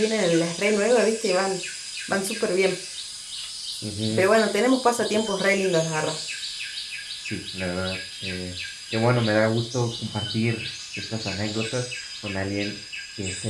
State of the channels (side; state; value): both; identical; correlation 1.00